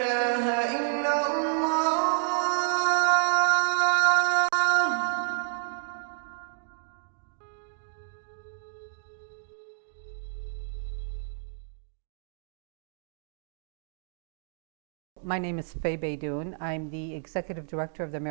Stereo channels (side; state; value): left; silent; 58 dB below the other